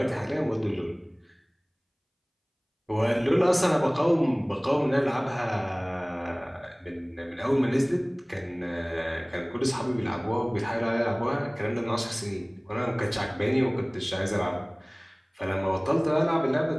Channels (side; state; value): both; identical; correlation 1.00